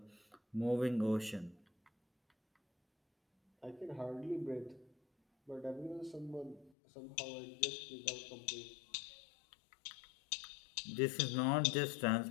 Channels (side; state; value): right; drops out; at 6.7 s